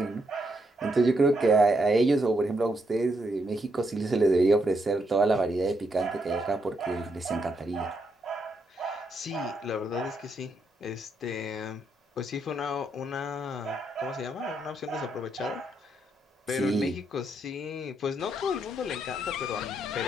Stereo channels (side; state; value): both; normal; correlation 0.78